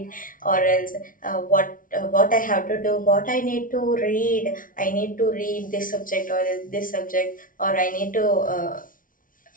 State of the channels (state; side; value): late; right; 0.39 ms